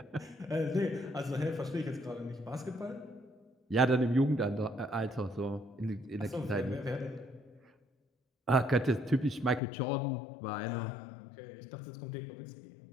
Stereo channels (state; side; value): drops out; right; at 9.6 s